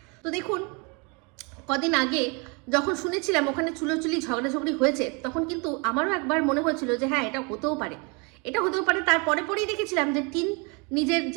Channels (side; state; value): left; quieter; 31.4 dB